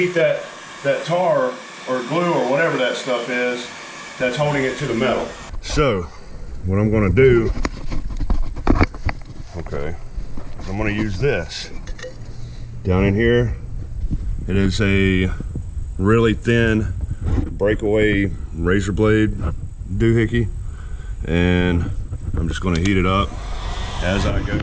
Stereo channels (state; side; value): identical; both; correlation 1.00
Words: that tar or glue or whatever that stuff is that's holding it to the metal. So, what I'm gonna do, okay, is I'm gonna use this. Down in here, it is a really thin breakaway razor blade doohickey, and I'm just going to heat it up as I go.